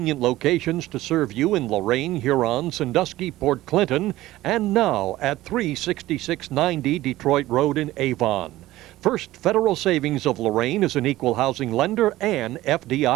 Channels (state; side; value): quieter; left; 16.5 dB